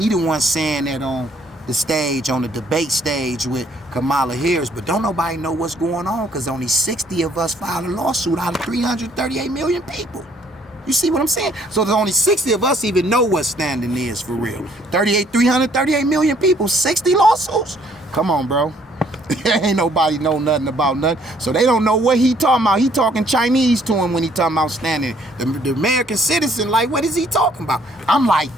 the one saying that on the stage, on the debate stage with Kamala Harris, but don't nobody know what's going on because only 60 of us filed a lawsuit out of 338 million people. You see what I'm saying? So there's only 60 of us even know what standing is for real. 338 million people, 60 lawsuits? Come on, bro. Ain't nobody know nothing about nothing. So they don't know what he talking about. He talking Chinese to him when he talking about standing. The American citizen, like, what is he talking about? I'm like,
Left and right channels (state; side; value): normal; both; correlation 0.64